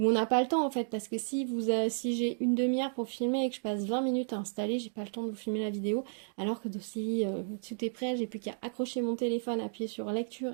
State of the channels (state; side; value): silent; left; digital silence